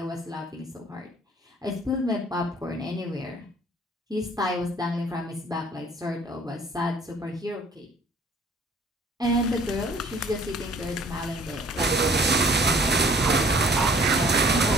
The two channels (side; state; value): both; normal; correlation 0.55